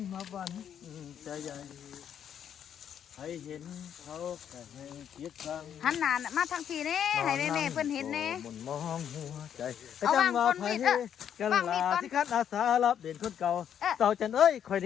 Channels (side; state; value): right; quieter; 9.1 dB